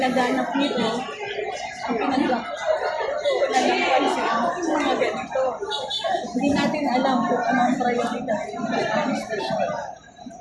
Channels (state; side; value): identical; both; correlation 1.00